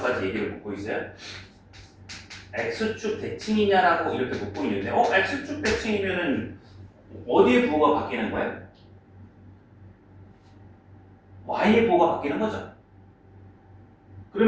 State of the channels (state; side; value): identical; both; correlation 1.00